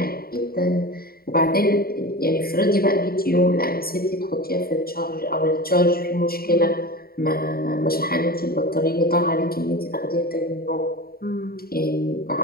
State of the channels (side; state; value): right; late; 0.44 ms